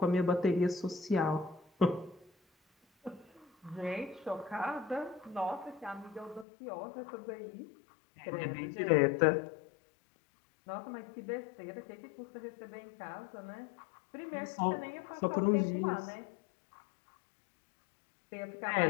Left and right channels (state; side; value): drops out; right; at 6.5 s